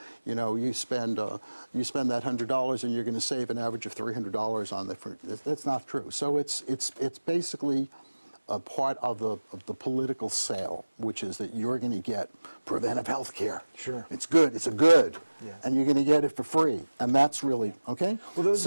spend that $100 and you're going to save an average of $300 on that's not true. So it's basically a part of the political sale, which is that you're going to get preventive health care. Sure. It's good. It's a good. Yeah. And you're going to get it for free. And that's really, okay? Well, those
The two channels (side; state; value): both; inverted; correlation -1.00